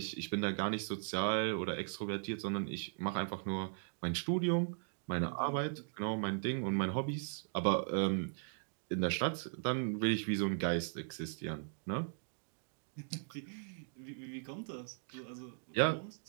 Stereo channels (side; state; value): left; silent; digital silence